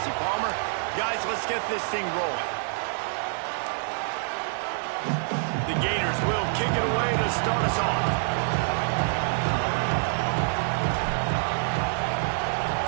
Palmer. Guys, let's get this thing rolling. The Gators will kick it away to start us off.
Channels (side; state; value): left; silent; 58 dB below the other